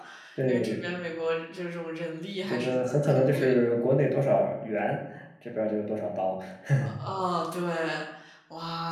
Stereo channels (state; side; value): identical; both; correlation 1.00